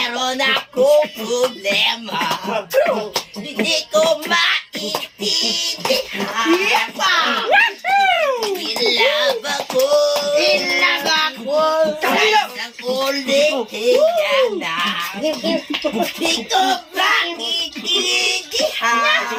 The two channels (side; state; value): both; identical; correlation 1.00